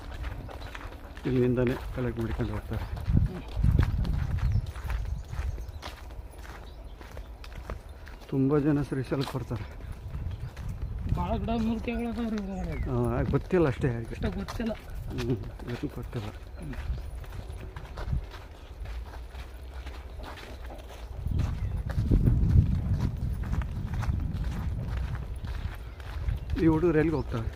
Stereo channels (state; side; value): identical; both; correlation 1.00